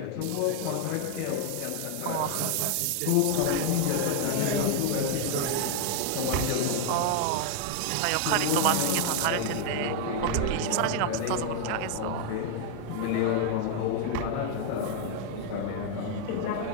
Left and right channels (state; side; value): different; both; correlation 0.00